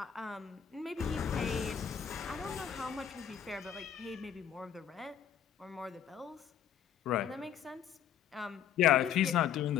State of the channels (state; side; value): quieter; right; 9.0 dB